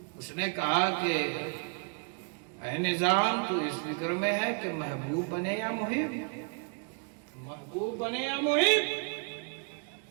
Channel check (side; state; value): left; quieter; 37.5 dB